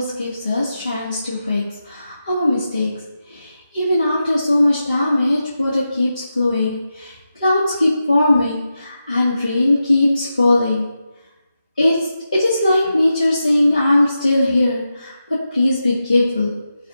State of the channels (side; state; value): both; inverted; correlation -0.89